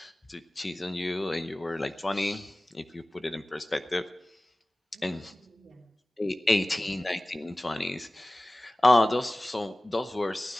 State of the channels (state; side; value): normal; both; correlation 0.98